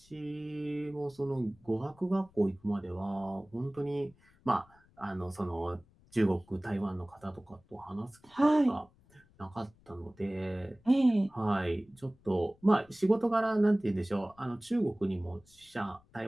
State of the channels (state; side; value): noise; left; rumble, 29 dB below the sound